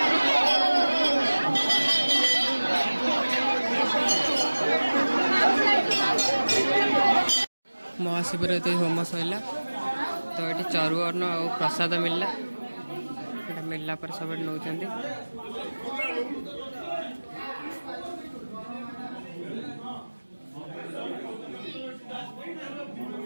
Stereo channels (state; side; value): inverted; both; correlation -1.00